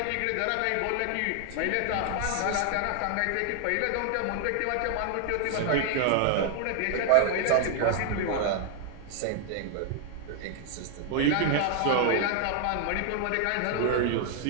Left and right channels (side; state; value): both; different; correlation 0.00